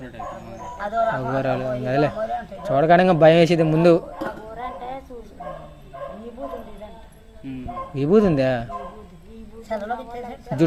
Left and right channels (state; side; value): identical; both; correlation 1.00